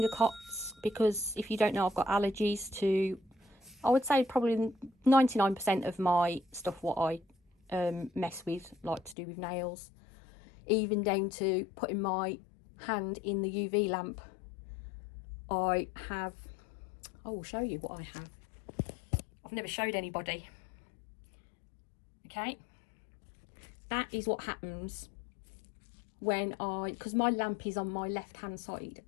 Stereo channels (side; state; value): right; drops out; at 9.2 s